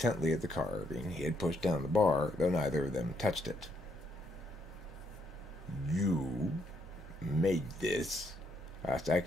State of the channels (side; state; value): both; normal; correlation 0.74